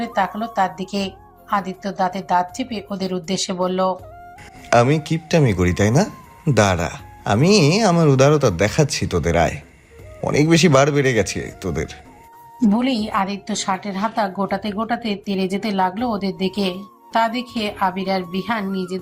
তাকালো তার দিকে। আদিত্য দাঁতে দাঁত চেপে ওদের উদ্দেশ্যে বলল, আমি কিপটামি করি তাই না? দাঁড়া, আমি আমার উদারতা দেখাচ্ছি তোদের। আয়, অনেক বেশি বার বেড়ে গেছে তোদের। বলেই আদিত্য শার্টের হাতা গোটাতে গোটাতে তেড়ে যেতে লাগলো ওদের দিকে। তা দেখে আবির আর বিহান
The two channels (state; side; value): identical; both; correlation 1.00